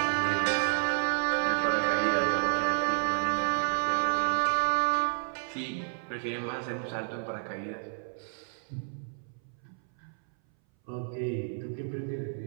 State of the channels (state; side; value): silent; left; 57 dB below the other